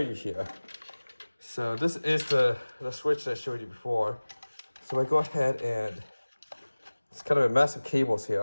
here. So this is the switch that I showed you before. So I go ahead and it's kind of a mess of cables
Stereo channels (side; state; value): both; inverted; correlation -1.00